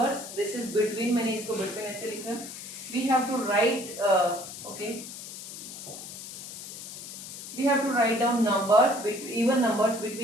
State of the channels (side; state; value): left; noise; hiss, 11 dB below the sound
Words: This is between. मैंने इसको between ऐसे लिखा. We have to write we have to write down even numbers